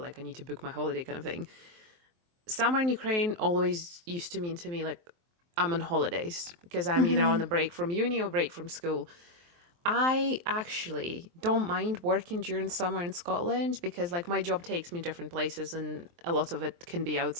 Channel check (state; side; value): late; left; 23 ms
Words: I need to book my holiday kind of thing. Summer in Ukraine always used to mean to me like I'm on holidays, because I'm either on a break from uni or break from school. I actually don't mind working during summer in Scotland because like my job takes me different places and a lot of it can be